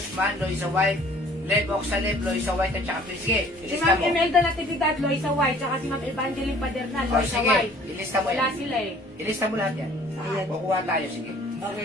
Loisa White, Lev Oxalep, Loisa White, at saka sige, Si ilista Ma'am mo. Imelda Natividad, Loisa White, tsaka si Ma'am Evangeline Padernal, O, Loisa sige, White. ilista mo Wala yan. sila eh. Ilista mo lahat yan. Ayan. Kukuha tayo, sige.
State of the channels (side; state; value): both; normal; correlation 0.54